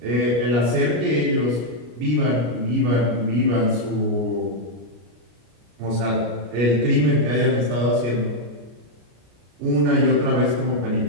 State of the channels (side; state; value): left; late; 33 ms